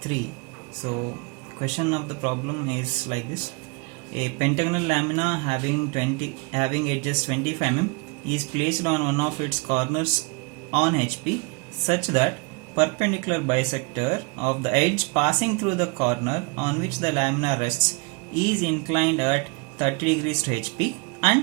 So question of the problem is like this. A pentagonal lamina having edges 25 mm is placed on one of its corners on HP such that perpendicular bisector of the edge passing through the corner on which the lamina rests is inclined at 30 degrees to HP and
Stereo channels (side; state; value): left; quieter; 30.2 dB